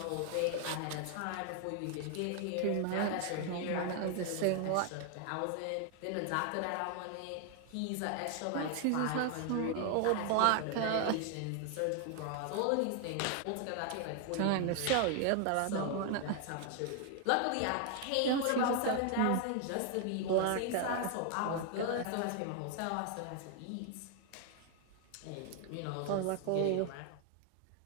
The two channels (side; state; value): both; different; correlation 0.00